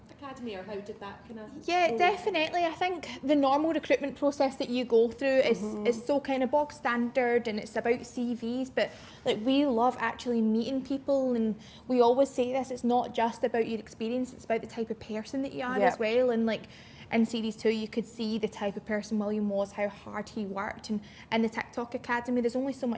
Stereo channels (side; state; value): both; identical; correlation 1.00